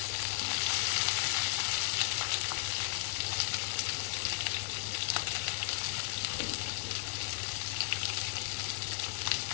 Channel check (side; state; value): right; silent; digital silence